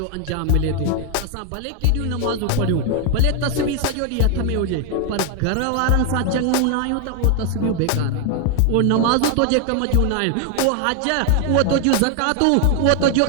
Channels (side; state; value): both; different; correlation 0.00